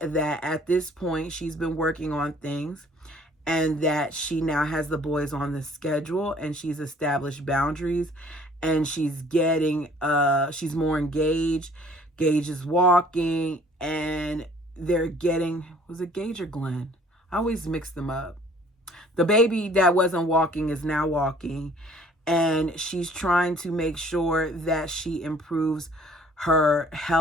at this point she's been working on things and that she now has the boys on the schedule and she's established boundaries and she's more engaged. Gage is walking and they're getting, was it Gage or Glenn? I always mix them up. The baby that wasn't walking is now walking, and she's trying to make sure that she improves her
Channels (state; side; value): normal; both; correlation 0.55